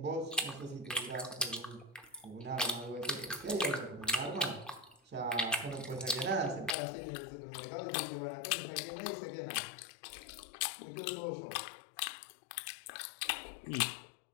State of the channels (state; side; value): drops out; right; at 6.8 s